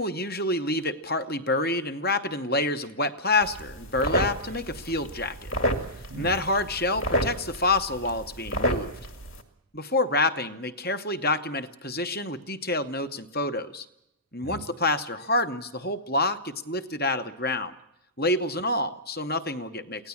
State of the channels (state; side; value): normal; both; correlation -0.15